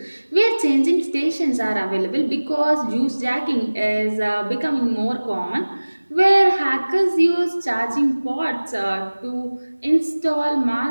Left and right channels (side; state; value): both; inverted; correlation -1.00